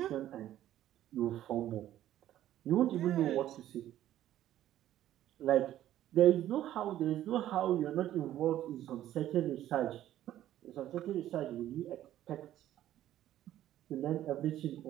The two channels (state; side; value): quieter; left; 12.8 dB